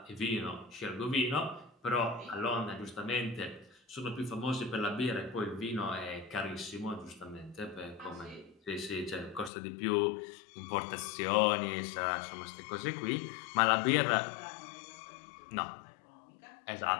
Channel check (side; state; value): right; drops out; at 9.5 s